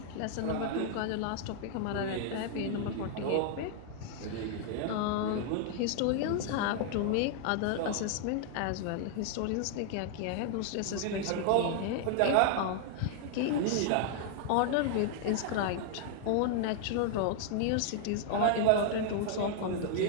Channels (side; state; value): both; different; correlation 0.00